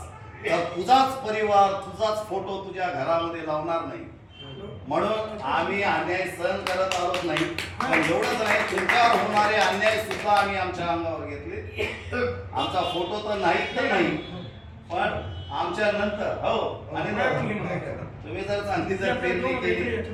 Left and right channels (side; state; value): both; identical; correlation 1.00